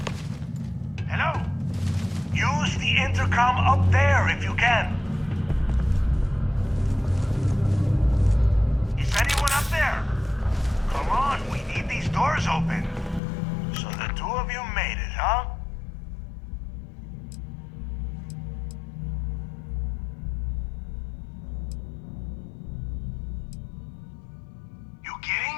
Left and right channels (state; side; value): drops out; right; at 13.2 s